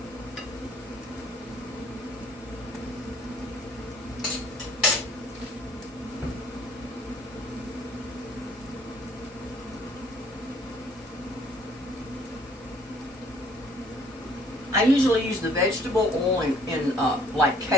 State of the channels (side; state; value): both; normal; correlation 0.59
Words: I usually use the vegetable oil in like